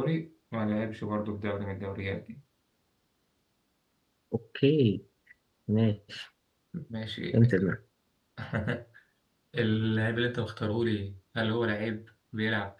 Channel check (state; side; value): identical; both; correlation 1.00